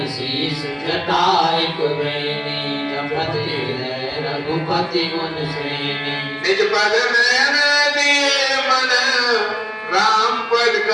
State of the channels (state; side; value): identical; both; correlation 1.00